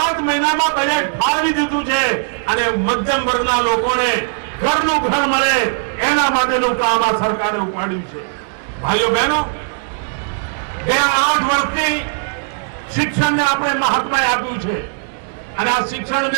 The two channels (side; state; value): left; silent; digital silence